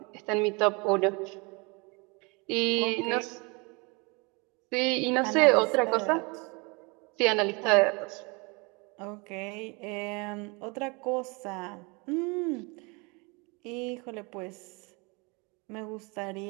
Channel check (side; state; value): left; quieter; 29.3 dB